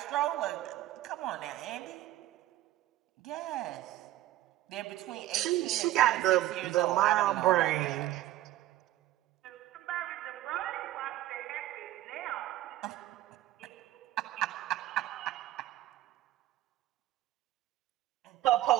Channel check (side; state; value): left; quieter; 15.0 dB